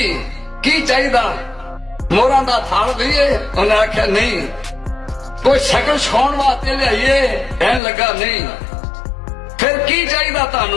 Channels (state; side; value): drops out; right; at 7.8 s